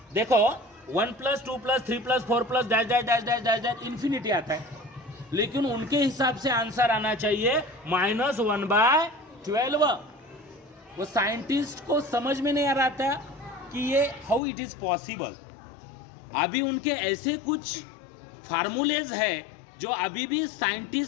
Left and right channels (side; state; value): right; drops out; at 14.4 s